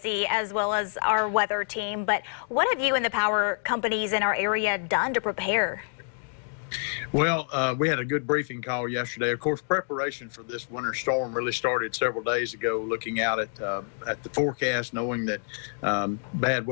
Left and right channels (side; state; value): right; silent; digital silence